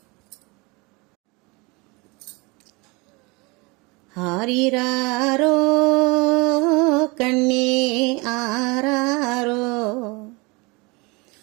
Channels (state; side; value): quieter; left; 26.9 dB